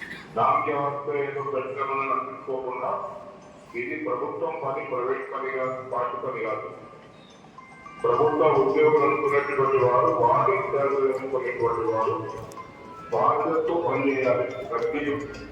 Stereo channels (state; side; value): identical; both; correlation 1.00